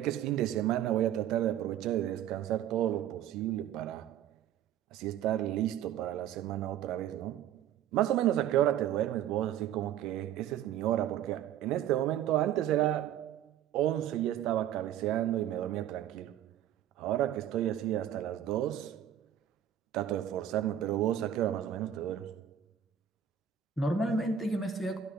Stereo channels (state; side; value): quieter; left; 10.1 dB